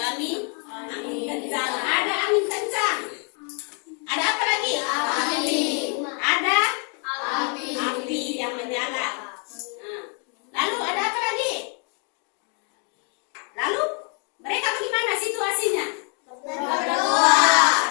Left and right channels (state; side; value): quieter; right; 36.9 dB